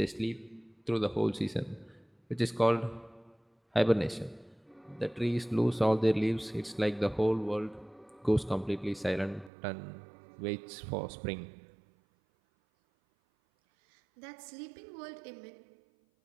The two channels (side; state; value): left; drops out; at 9.5 s